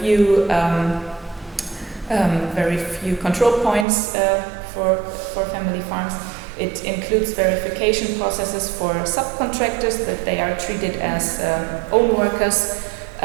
few control points for family farms. It includes verification processes for subcontractors, that they are treated as own workers,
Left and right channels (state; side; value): drops out; left; at 3.9 s